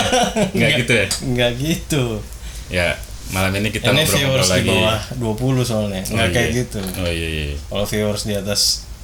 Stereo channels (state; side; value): identical; both; correlation 1.00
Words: Gitu ya. Enggak gitu. Ya, malam ini kita Ini ngobrol-ngobrol viewers lagi. di bawah 20 soalnya, nggak kayak iya. gitu. Oh iya. Kalau viewers di atas